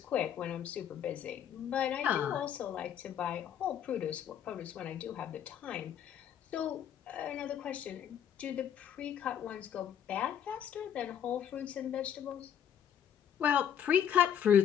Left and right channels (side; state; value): right; quieter; 9.2 dB